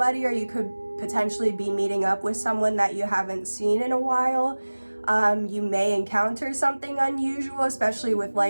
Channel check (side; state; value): both; inverted; correlation -1.00